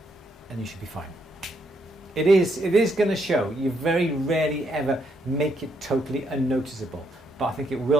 and you should be fine. It is going to show. You very rarely ever make it totally unnoticeable, but I think it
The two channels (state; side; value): normal; both; correlation 0.75